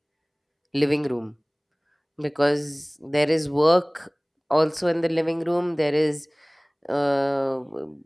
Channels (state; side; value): identical; both; correlation 1.00